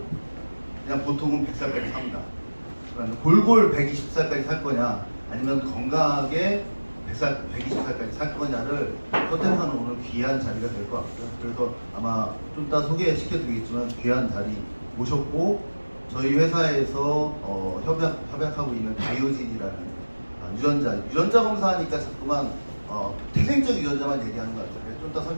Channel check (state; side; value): inverted; both; correlation -1.00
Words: 그냥 보통은 100살까지 삽니다. 그러니까 골골 120살까지 살 거냐 아니면 건강하게 120살까지 살 거냐를 선택하는 오늘 귀한 자리가 될 것 같고요. 그래서 아마 좀 이따 소개시켜드리겠지만 귀한 자리 모셨고 저희 회사에서 협약하고 있는 바이오진이라는 유전자 검사하니까 자꾸만 태생적 유전자만 얘기하는 것 같아요. 좀 이따